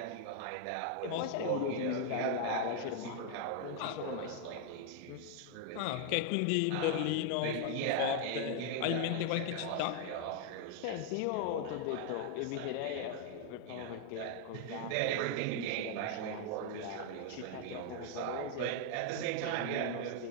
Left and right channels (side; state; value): both; different; correlation 0.00